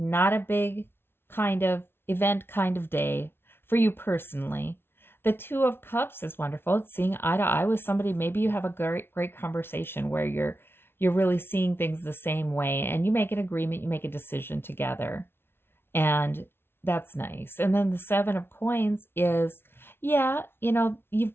a big kind of event kind of day for you personally. The Two of Cups is wonderful. It's seeing eye to eye with somebody. Maybe you have a great conversation where you're really seeing things the same way and you make an agreement, you make a decision together. And that's nice. And then the Seven of Coins is, yeah, you've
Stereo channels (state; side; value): late; right; 0.11 ms